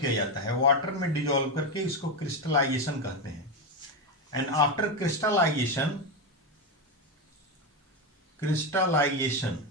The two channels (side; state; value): both; normal; correlation 0.11